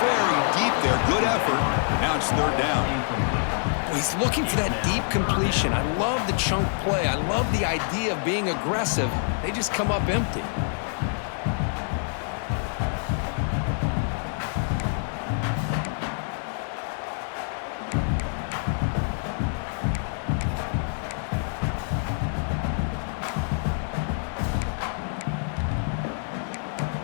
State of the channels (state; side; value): silent; right; 61 dB below the other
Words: very deep there. Good effort. Now it's third down. He's looking for that deep completion. I love the chunk play. I love the idea of being aggressive. They just come up empty.